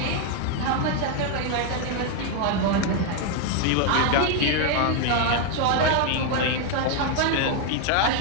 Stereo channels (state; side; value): different; both; correlation 0.01